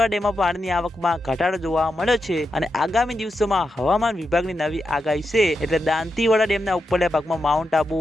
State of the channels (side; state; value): both; normal; correlation 0.87